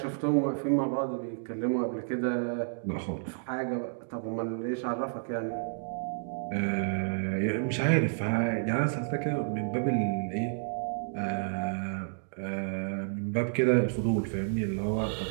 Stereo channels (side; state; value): left; silent; digital silence